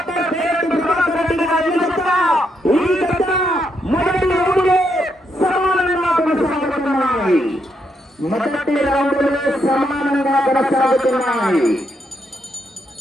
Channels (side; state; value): both; normal; correlation 0.78